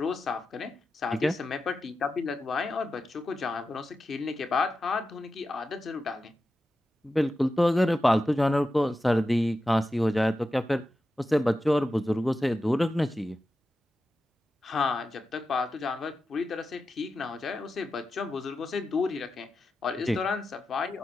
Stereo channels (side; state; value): both; normal; correlation 0.91